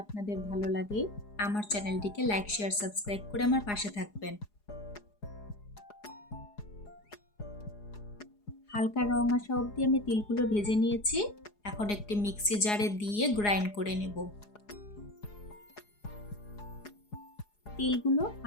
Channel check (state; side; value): late; right; 4.8 ms